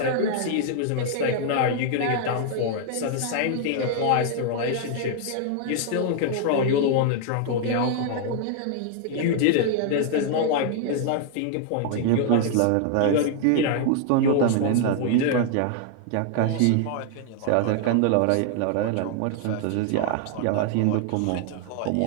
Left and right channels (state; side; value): different; both; correlation 0.00